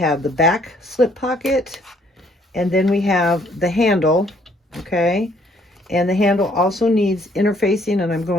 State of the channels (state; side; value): normal; both; correlation 0.64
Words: the back slip pocket, and then we have the handle, okay? And the handle also needs interfacing, and I'm